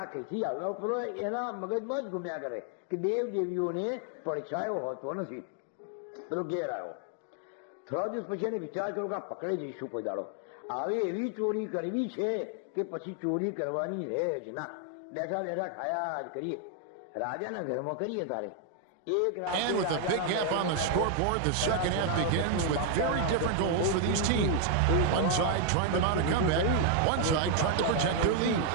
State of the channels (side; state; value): both; different; correlation 0.00